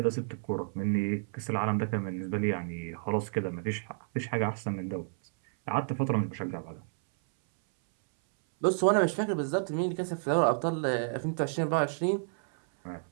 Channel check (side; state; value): left; silent; 57 dB below the other